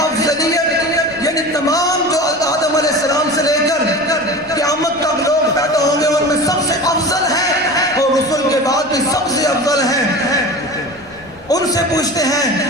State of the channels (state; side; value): noise; left; rumble, 27 dB below the sound